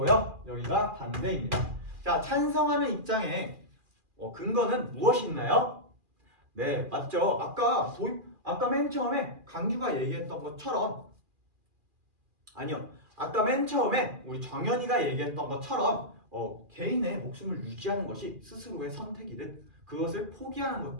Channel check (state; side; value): late; left; 2.4 ms